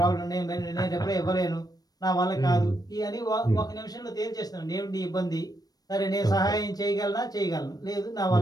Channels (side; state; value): right; late; 0.19 ms